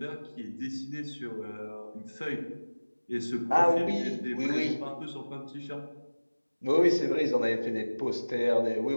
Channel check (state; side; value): inverted; both; correlation -1.00